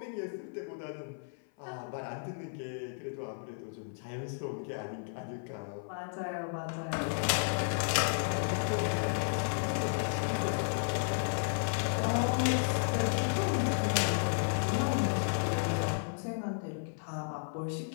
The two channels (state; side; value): silent; right; 55 dB below the other